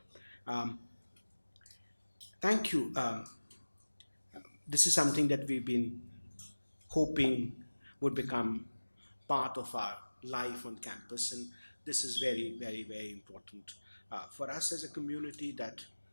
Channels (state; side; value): inverted; both; correlation -1.00